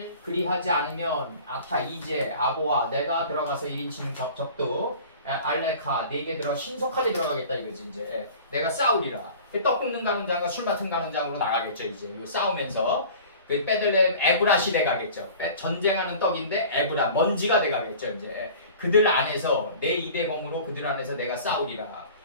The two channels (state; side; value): inverted; both; correlation -0.43